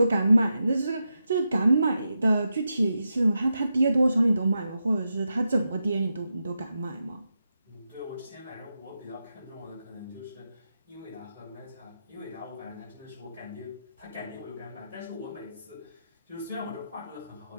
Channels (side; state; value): both; inverted; correlation -0.88